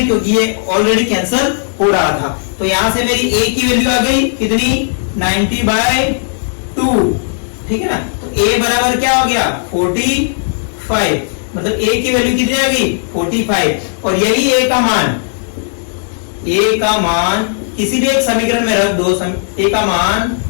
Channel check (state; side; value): silent; right; digital silence